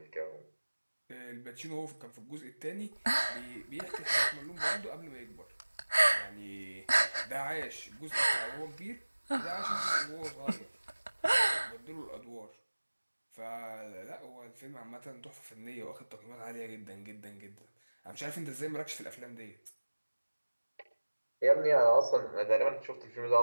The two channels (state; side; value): inverted; both; correlation -1.00